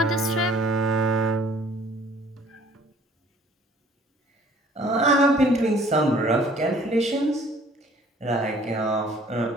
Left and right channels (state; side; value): normal; both; correlation 0.55